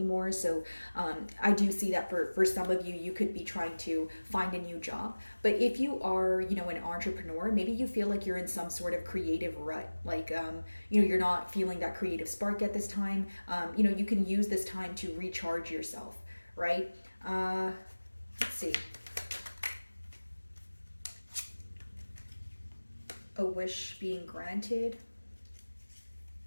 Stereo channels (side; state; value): both; inverted; correlation -1.00